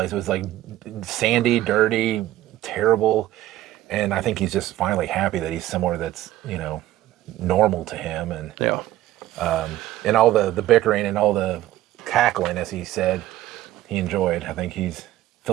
It was like sandy, dirty, terrible, and I think he's just finally happy that he's somewhere that's normal to him, and and all the bickering and all the cackling, as he said, he enjoyed. I think he's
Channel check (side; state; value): left; quieter; 14.5 dB